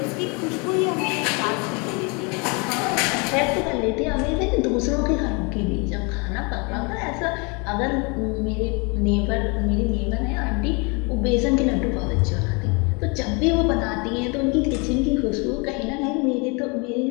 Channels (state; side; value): quieter; right; 31.0 dB